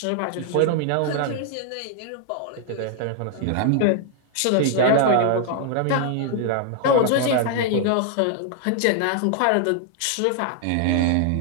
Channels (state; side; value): different; both; correlation 0.00